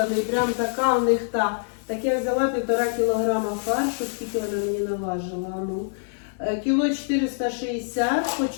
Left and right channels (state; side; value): silent; right; digital silence